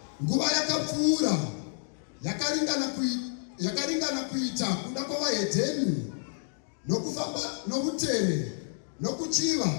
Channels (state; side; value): silent; right; digital silence